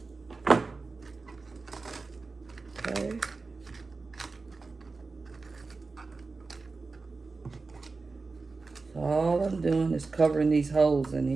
Okay. So all I'm doing is covering these holes in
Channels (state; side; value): quieter; left; 4.0 dB